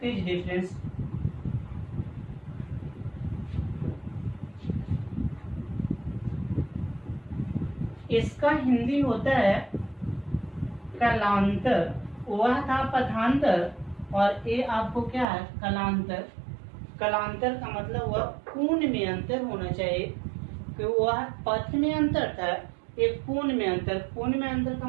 डिफरेंस। इसका हिंदी होता है कलांतर। वह था पथांतर और ये आपको क्या है, कलांतर। कलांतर का मतलब वह कोण में अंतर होना चाहिए, कि वह पथ में अंतर था, एक कोण में अंतर। कोण में अंतर का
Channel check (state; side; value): drops out; left; at 15.2 s